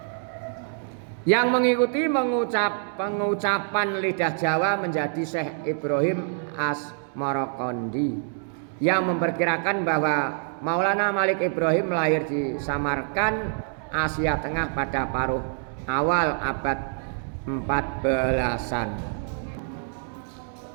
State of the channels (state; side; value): silent; left; digital silence